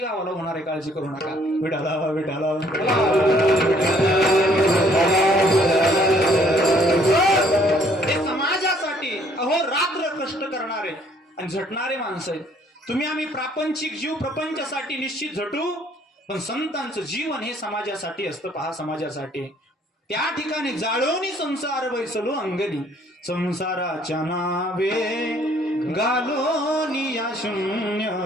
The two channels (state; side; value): normal; both; correlation 0.62